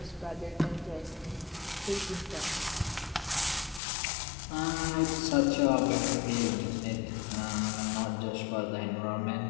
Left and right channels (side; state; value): right; drops out; at 3.8 s